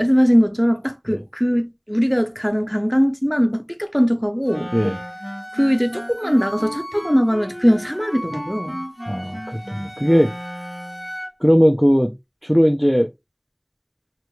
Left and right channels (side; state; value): both; identical; correlation 1.00